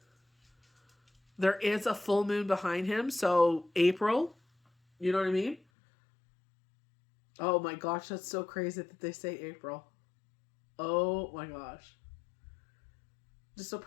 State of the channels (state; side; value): drops out; right; at 5.6 s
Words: There is a full moon behind him, so April, you know what I mean? Oh my gosh, that's so crazy that they say April. Oh my gosh. Just a